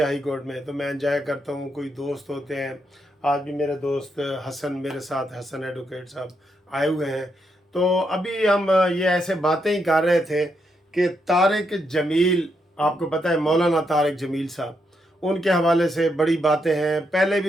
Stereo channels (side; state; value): both; normal; correlation 0.80